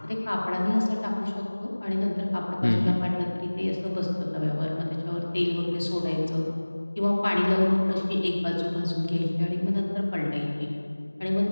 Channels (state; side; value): inverted; both; correlation -1.00